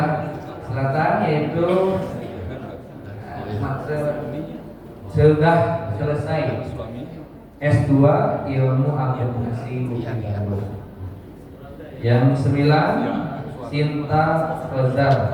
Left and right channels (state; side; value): identical; both; correlation 1.00